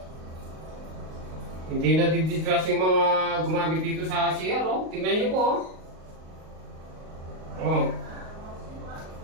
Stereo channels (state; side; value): late; left; 38 ms